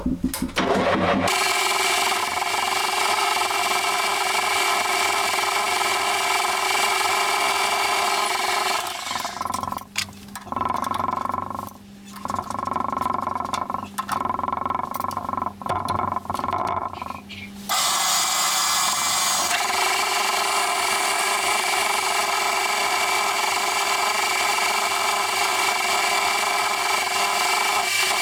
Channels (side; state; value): both; identical; correlation 1.00